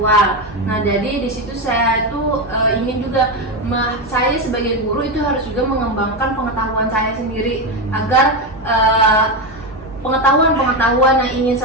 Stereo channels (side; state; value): both; normal; correlation 0.12